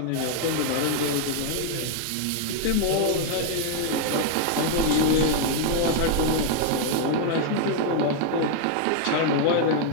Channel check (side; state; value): both; different; correlation 0.00